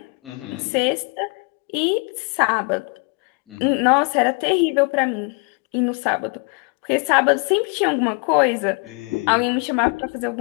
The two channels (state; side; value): quieter; right; 33.9 dB